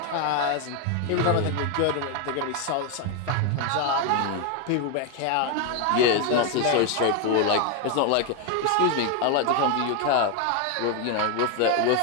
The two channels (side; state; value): both; different; correlation 0.01